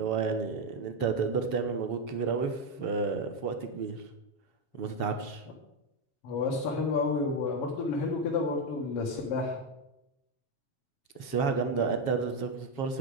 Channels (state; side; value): late; right; 7.3 ms